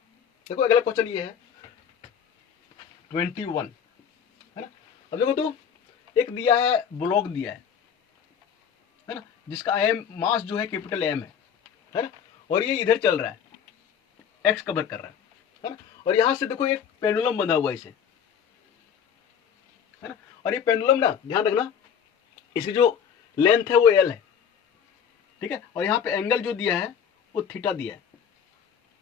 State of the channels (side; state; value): right; quieter; 7.8 dB